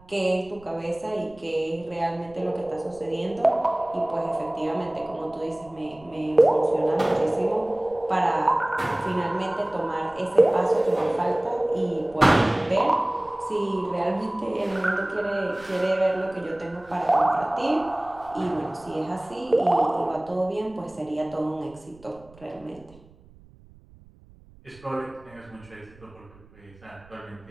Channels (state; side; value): noise; right; rumble, 25 dB below the sound